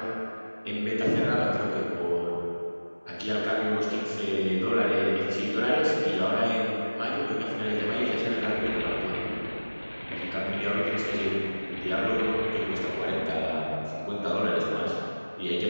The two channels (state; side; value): inverted; both; correlation -1.00